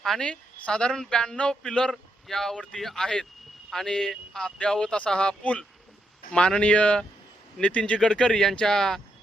आणि साधारण 92 पिलर यावरती आहेत. आणि अद्यावत असा हा पूल माननीय नितीनजी गडकरी यांच्या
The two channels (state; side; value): normal; both; correlation 0.81